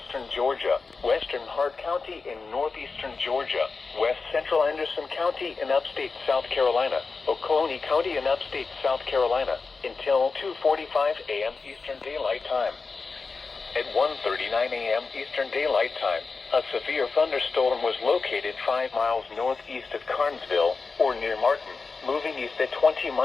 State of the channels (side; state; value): right; quieter; 4.4 dB